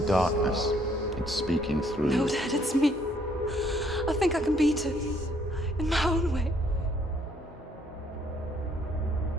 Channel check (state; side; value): normal; both; correlation 0.66